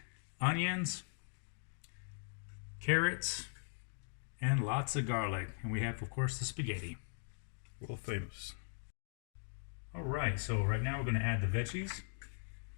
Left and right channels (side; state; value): right; silent; digital silence